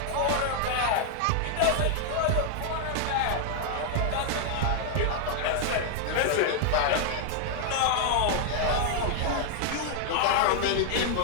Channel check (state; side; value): different; both; correlation 0.00